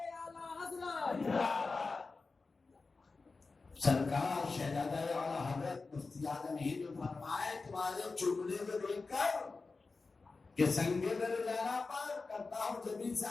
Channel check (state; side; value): quieter; right; 4.0 dB